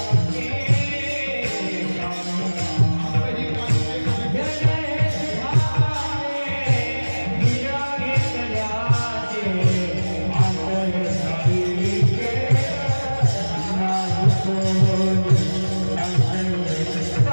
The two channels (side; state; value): both; inverted; correlation -1.00